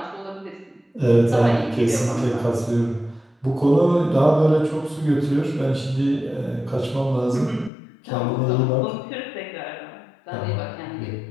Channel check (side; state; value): right; drops out; at 7.7 s